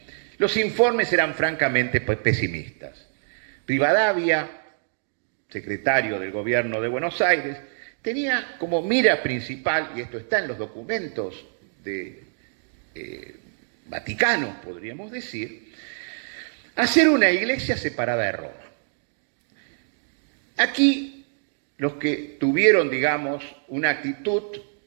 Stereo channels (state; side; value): silent; left; digital silence